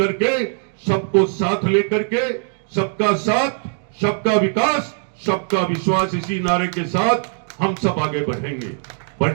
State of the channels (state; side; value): silent; left; 56 dB below the other